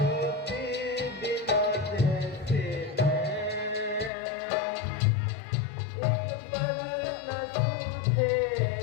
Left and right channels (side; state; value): right; drops out; at 4.1 s